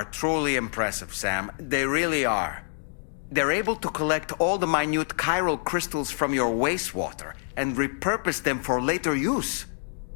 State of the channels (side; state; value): right; silent; 57 dB below the other